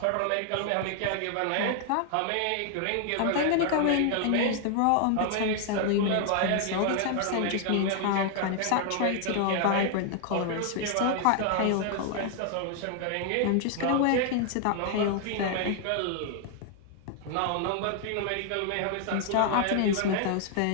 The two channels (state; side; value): different; both; correlation 0.00